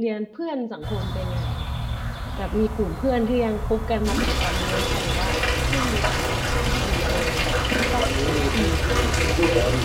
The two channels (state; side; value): identical; both; correlation 1.00